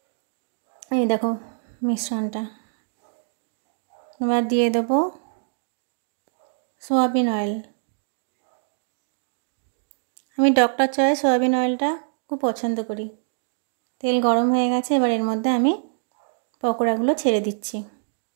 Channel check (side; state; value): left; silent; digital silence